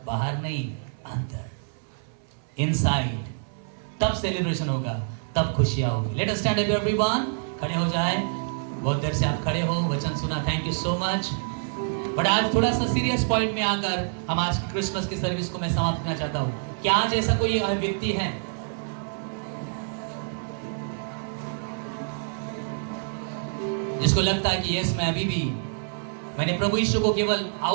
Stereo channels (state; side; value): silent; left; 60 dB below the other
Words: बाहर नहीं, अंदर, इनसाइड। तब सेलिब्रेशन होगा, तब खुशियां होगी। Let us stand up everyone. खड़े हो जाए। बहुत देर से आप खड़े हो, वचन सुना, thank you so much. But आज थोड़ा सा सीरियस पॉइंट में आकर हम आज की क्रिसमस की सर्विस को मैं समाप्त करना चाहता हूं। क्या आज ऐसा कोई व्यक्ति है जिसको लगता है कि यस, मैं अभी भी मैंने प्रभु यीशु को केवल